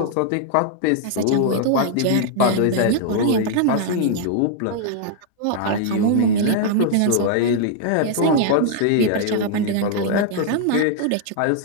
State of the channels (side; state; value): both; different; correlation 0.00